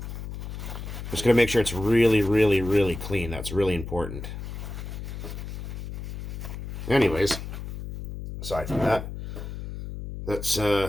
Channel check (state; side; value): noise; left; hum, 8 dB below the sound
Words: Just gonna make sure it's really clean. That's really important. Anyways, aside from that, let's